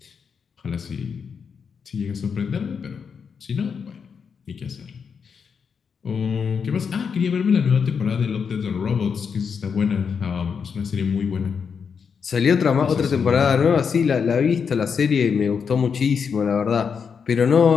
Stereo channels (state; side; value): quieter; right; 6.3 dB